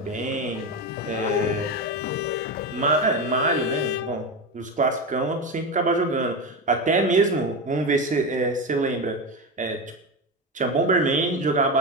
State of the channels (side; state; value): both; normal; correlation 0.18